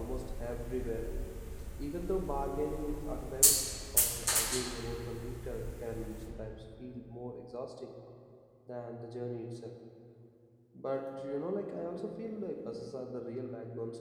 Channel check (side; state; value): both; identical; correlation 1.00